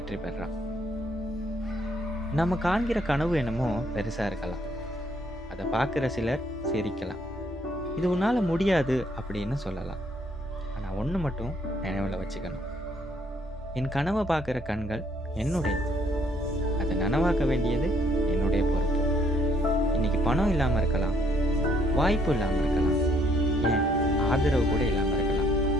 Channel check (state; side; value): normal; both; correlation 0.67